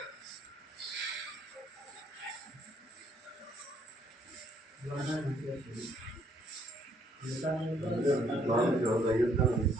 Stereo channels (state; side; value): normal; both; correlation 0.67